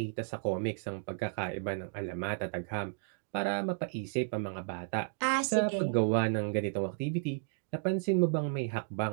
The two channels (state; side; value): silent; left; digital silence